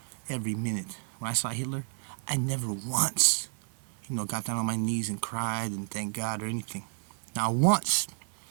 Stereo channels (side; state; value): left; silent; 57 dB below the other